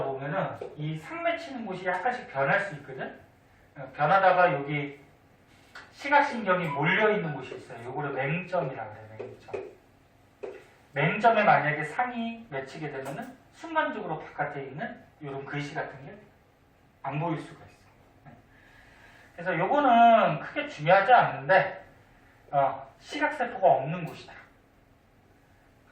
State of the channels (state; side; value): identical; both; correlation 1.00